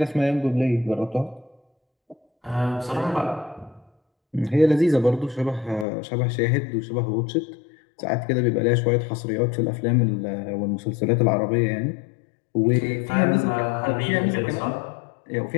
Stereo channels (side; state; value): right; drops out; at 5.9 s